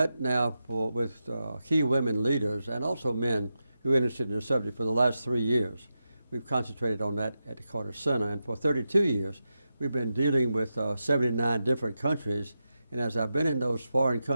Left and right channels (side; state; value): both; inverted; correlation -0.90